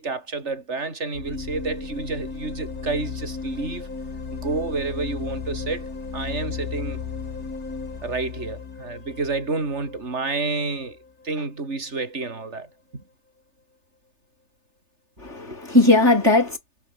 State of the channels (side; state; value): left; late; 3.3 ms